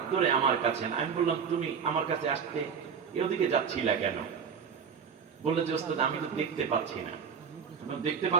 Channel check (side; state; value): left; quieter; 6.6 dB